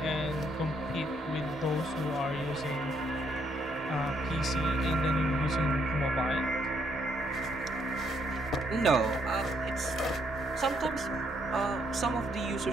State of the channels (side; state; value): both; normal; correlation 0.72